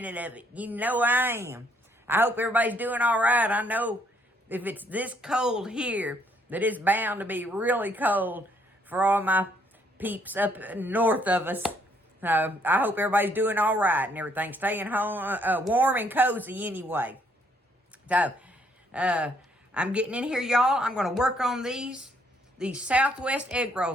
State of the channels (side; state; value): both; normal; correlation 0.68